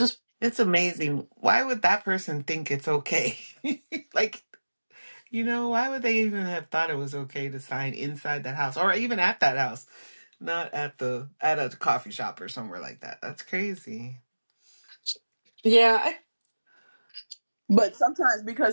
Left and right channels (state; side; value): inverted; both; correlation -1.00